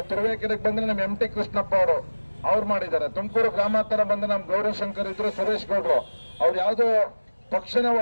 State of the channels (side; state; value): both; inverted; correlation -1.00